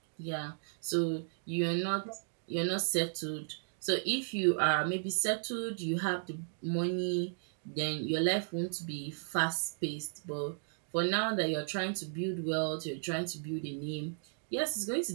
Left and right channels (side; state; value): left; silent; digital silence